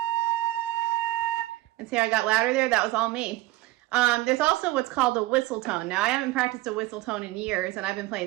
And see how I got louder there? That was all me. There's also what's called a whistle tone. Now, I haven't practiced a whistle tone in years, and I've been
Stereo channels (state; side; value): quieter; left; 17.6 dB